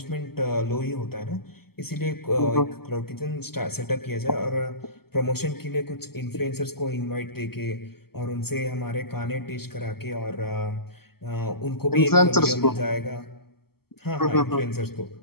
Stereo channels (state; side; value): late; right; 0.95 ms